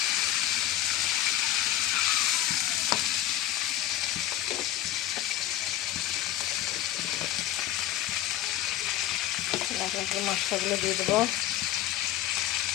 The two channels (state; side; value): quieter; right; 13.3 dB